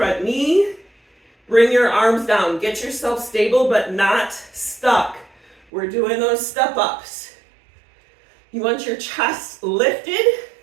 knee. Bring your arms down. Get yourself stable but not stuck. We're doing those step ups. You want your chest lifted.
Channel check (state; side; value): drops out; left; at 5.6 s